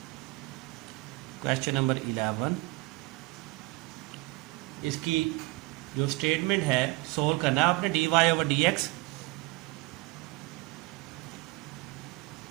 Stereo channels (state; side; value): quieter; left; 22.5 dB